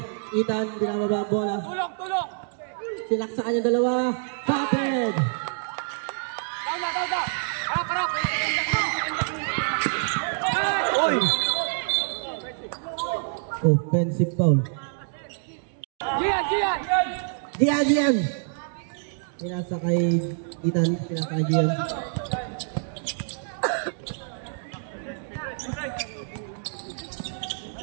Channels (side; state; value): left; silent; digital silence